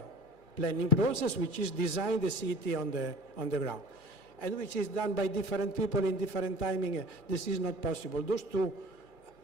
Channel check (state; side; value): late; right; 2.4 ms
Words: planning process, which is design the city on the ground, and which is done by different people in different timing. This is not possible. Those two